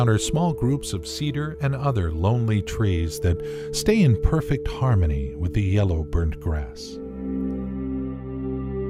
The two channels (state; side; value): identical; both; correlation 1.00